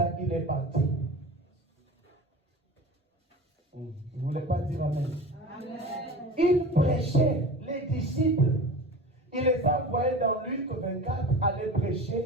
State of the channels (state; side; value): normal; both; correlation 0.34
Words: il est parti. Il ne voulait pas dire amen. Amen. Il prêchait, les disciples. Il les a envoyés dans Luc 24 aller